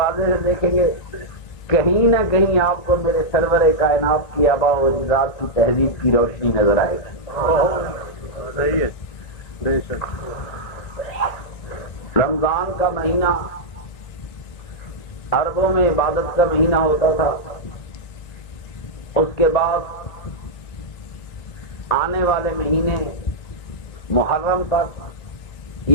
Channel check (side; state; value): right; late; 1.9 ms